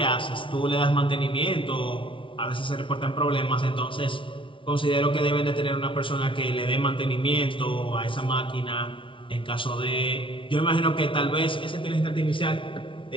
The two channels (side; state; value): right; late; 0.25 ms